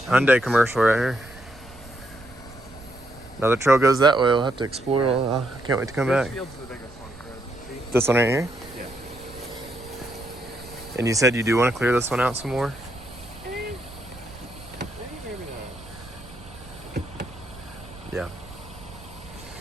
Hyundai commercial right here. Another trail goes that way. We'll have to explore. I can't wait to come back. This field's the biggest one, Fred. See? This one right here? Yeah. And you said you do want to clear this one out some more? Maybe not. Yeah.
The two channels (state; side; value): noise; right; rumble, 19 dB below the sound